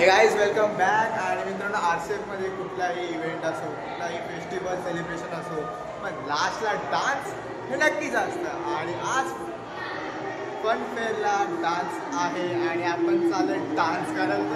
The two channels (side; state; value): both; identical; correlation 1.00